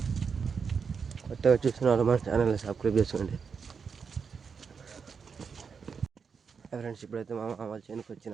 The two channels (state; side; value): quieter; left; 5.9 dB